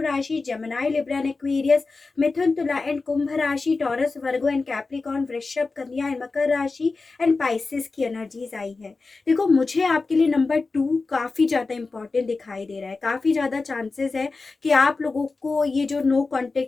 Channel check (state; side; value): quieter; right; 3.9 dB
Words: राशि, जेमिनी, लिब्रा एंड एक्वेरियस, मिथुन, तुला एंड कुंभ राशि, टॉरस, वर्गो एंड कैप्रिकॉर्न, वृषभ, कन्या एंड मकर राशि एंड पाइसेस की एनर्जीज आई है। देखो मुझे आपके लिए नंबर 2 काफी ज्यादा इंपॉर्टेंट दिखाई दे रहा है। काफी ज्यादा चांसेस है कि आप लोगों को ये जो नो